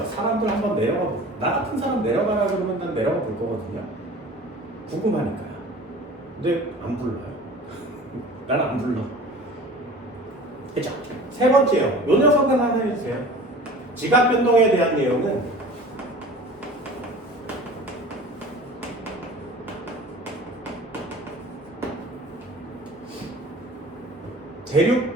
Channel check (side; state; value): both; normal; correlation 0.42